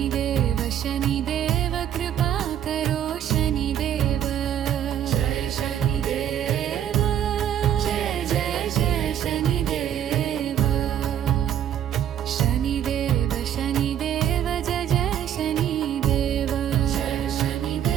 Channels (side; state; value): left; quieter; 10.1 dB